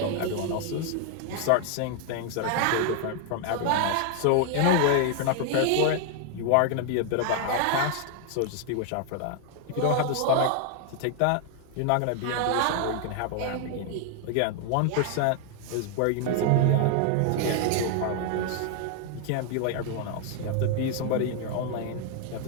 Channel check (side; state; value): both; different; correlation 0.00